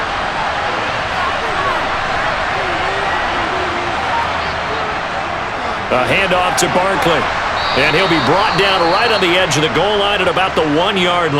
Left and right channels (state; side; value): identical; both; correlation 1.00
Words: A handoff to Barkley. And he'll be brought down right on the edge of the goal line at about the 1-yard